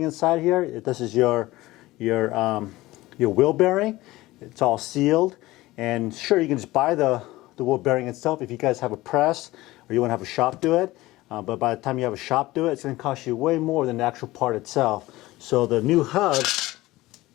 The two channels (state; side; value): quieter; right; 18.4 dB